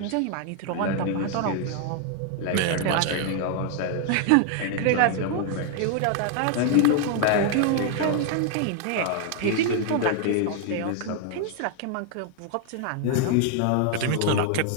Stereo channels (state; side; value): different; both; correlation 0.00